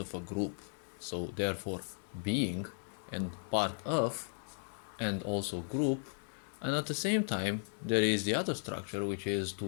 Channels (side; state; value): right; silent; digital silence